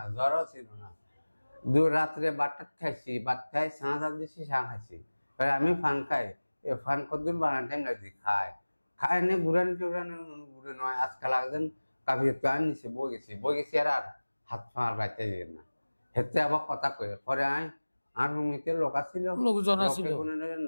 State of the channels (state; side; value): inverted; both; correlation -1.00